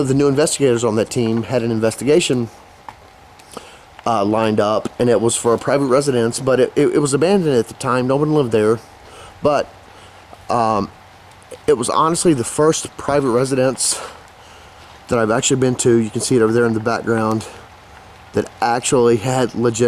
the new investigators on that team had an investigation lined up. And it was for a private residence, but it was abandoned at the time. No one lived there. But it was honestly the first private residence that I've actually been to. You can see it over there in the background, that actually had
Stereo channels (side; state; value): both; identical; correlation 1.00